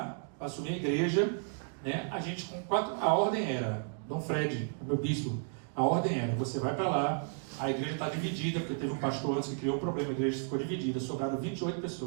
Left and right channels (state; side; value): silent; left; 56 dB below the other